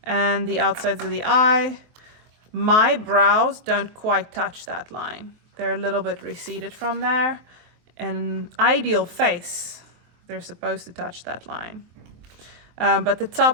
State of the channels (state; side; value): late; left; 23 ms